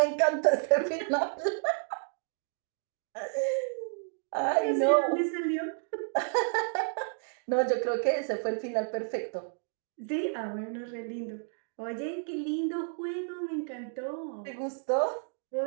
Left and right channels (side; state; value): left; silent; 57 dB below the other